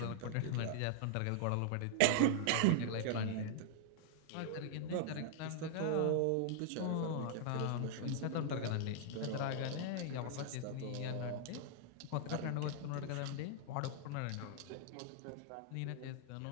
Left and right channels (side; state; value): both; different; correlation -0.01